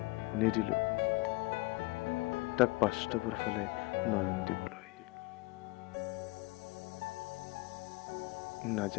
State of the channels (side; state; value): right; quieter; 23.3 dB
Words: নিদিলো তাক বাস্তৱৰ ফালে নয়ন দিবলৈ।